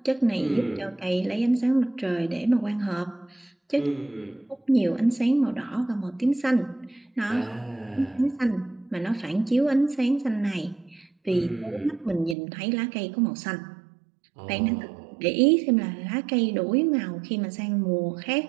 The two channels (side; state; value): left; drops out; at 12.4 s